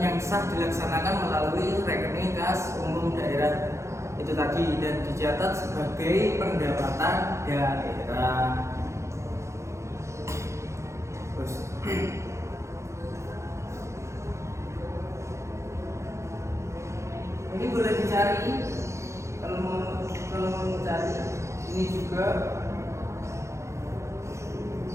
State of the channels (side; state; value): left; late; 0.14 ms